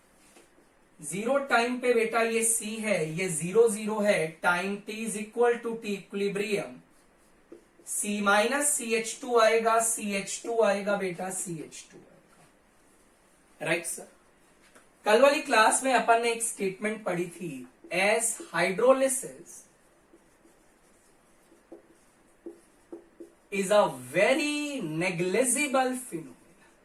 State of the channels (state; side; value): identical; both; correlation 1.00